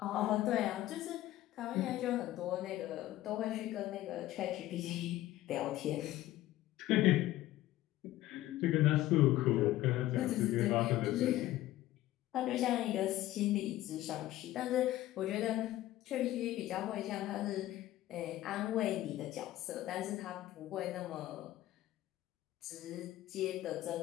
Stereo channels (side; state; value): right; quieter; 15.1 dB